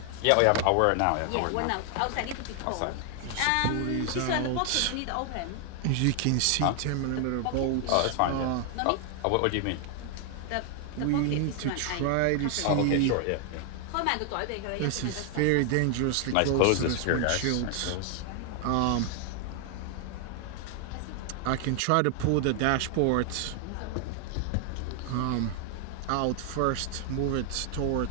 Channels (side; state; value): both; different; correlation 0.00